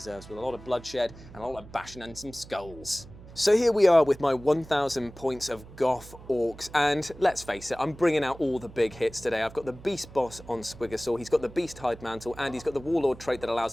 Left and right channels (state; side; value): noise; right; hum, 18 dB below the sound